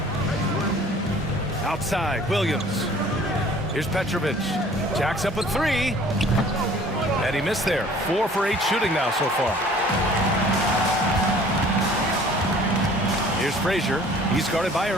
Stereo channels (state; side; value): normal; both; correlation 0.51